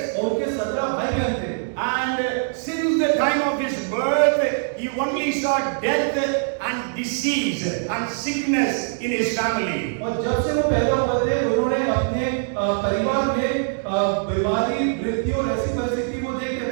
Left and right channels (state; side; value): silent; left; digital silence